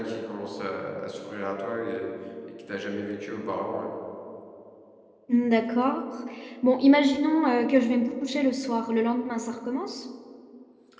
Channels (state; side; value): identical; both; correlation 1.00